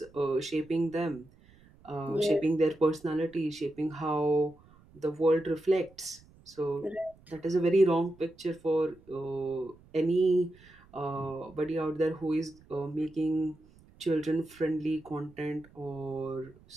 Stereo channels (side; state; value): right; noise; rumble, 26 dB below the sound